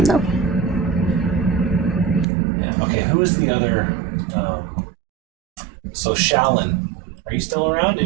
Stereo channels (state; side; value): drops out; left; at 2.2 s